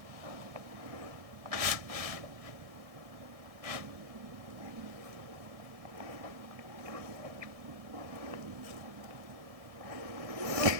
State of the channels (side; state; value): left; late; 1.7 ms